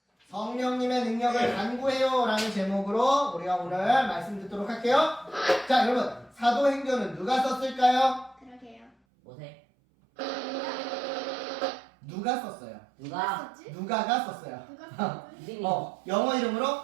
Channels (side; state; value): left; drops out; at 8.9 s